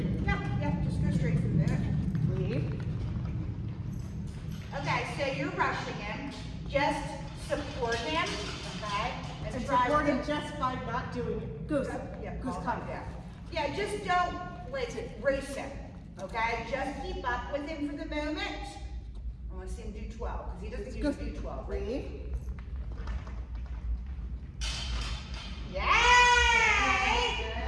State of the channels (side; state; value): both; identical; correlation 1.00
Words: Yeah, just go straight from there. Leave. Okay, so you're rushing him. Just support him, okay? And support him just by not doing it. Goose. Yeah, Goose, come down. Yeah, just don't, race him, okay? Just keep up with him for the moment. I want to see him do 12, because he doesn't usually do 12. Breathe. Yay!